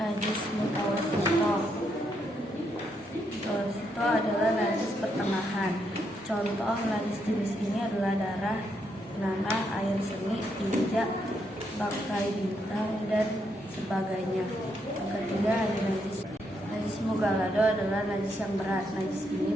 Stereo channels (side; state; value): both; normal; correlation 0.78